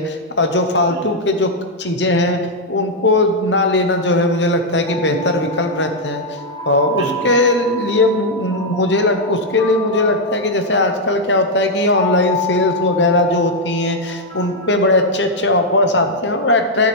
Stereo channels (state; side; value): normal; both; correlation -0.01